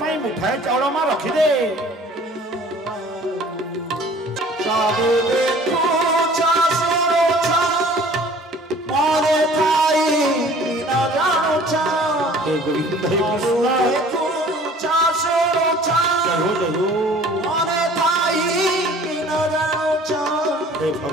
मुठाए चाउल माँ रखिदे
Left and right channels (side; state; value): both; normal; correlation 0.50